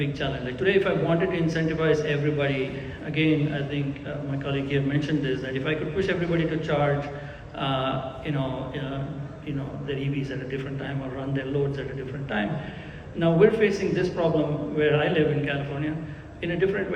challenge. Like today, if I wanted to incentivize everybody, again, I think my colleague here mentioned this, that if I could push everybody to charge, their EVs at a different time or run their loads at a different time. Now we're facing this problem where I live in California in a different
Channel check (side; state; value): both; identical; correlation 1.00